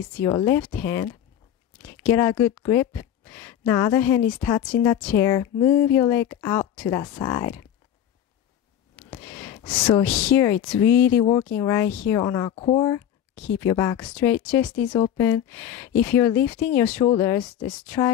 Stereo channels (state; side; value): quieter; right; 10.3 dB